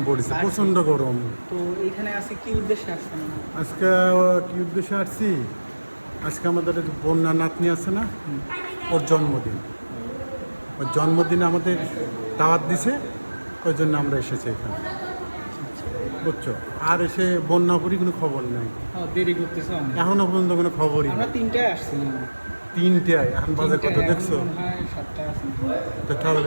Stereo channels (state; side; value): inverted; both; correlation -1.00